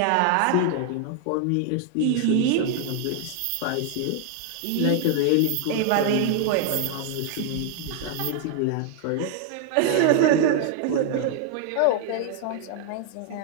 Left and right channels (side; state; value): both; different; correlation 0.00